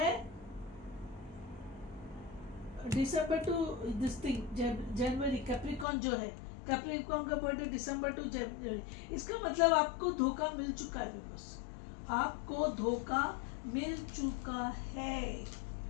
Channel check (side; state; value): right; drops out; at 5.9 s